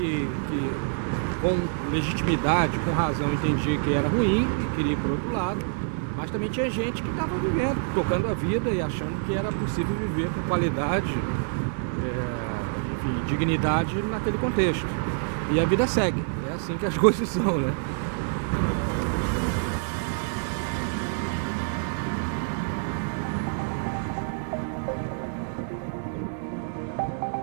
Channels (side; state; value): left; silent; digital silence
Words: com legitimidade, com razão, entendia que era ruim e queria ir para o outro lado. Mas também tinha gente que estava vivendo, tocando a vida e achando que era possível viver com qualidade, enfim, dignidade naquele contexto. E a vida segue, é assim que as coisas são, né?